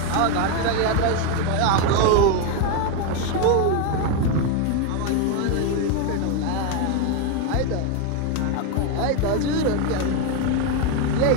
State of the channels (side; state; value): both; different; correlation 0.01